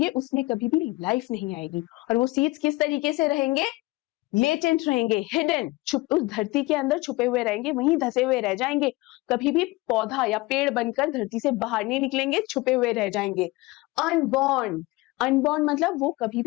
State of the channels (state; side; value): quieter; right; 21.8 dB